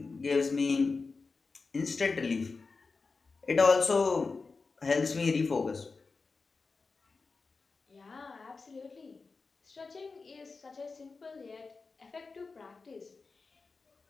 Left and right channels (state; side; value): quieter; right; 4.3 dB